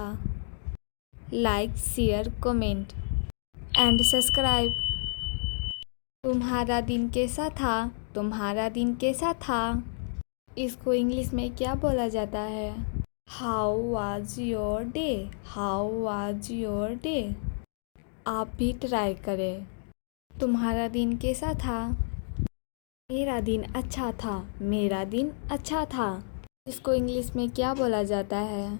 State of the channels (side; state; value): right; silent; digital silence